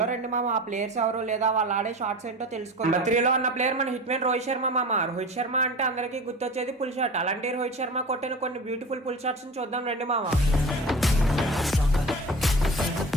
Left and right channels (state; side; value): normal; both; correlation 0.34